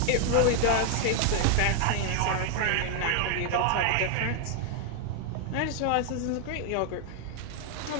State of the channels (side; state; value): both; different; correlation 0.00